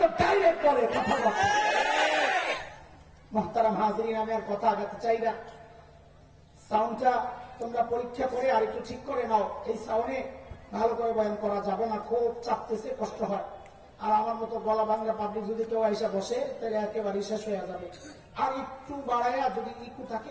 ডাইরেক্ট বলে, কথা বলে। মুহতারাম হাজরিন, আমি আর কথা আগাতে চাই না। সাউন্ডটা তোমরা পরীক্ষা করে আর একটু ঠিক করে নাও। এই সাউন্ডে ভালো করে বয়ান করা যাবে না, খুব চাপতেছে, কষ্ট হয়। আর আমার মতো গলা ভাঙা পাবলিক যদি কেউ এসে বসে, তাহলে একেবারে শেষ হয়ে যাবে। আর একটু বাড়াইয়া যদি ইকু থাকে,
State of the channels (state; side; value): identical; both; correlation 1.00